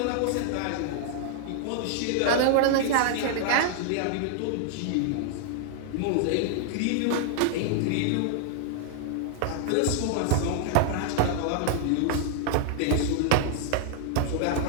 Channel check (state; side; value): different; both; correlation -0.01